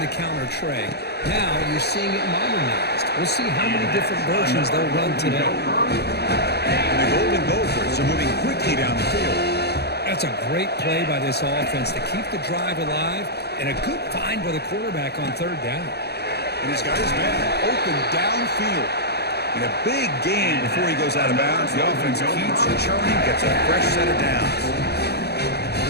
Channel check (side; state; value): right; late; 0.48 ms